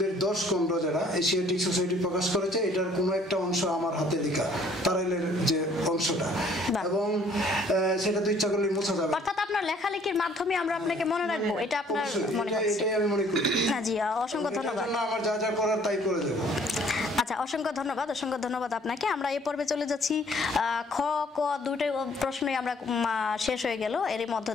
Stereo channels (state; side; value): normal; both; correlation 0.59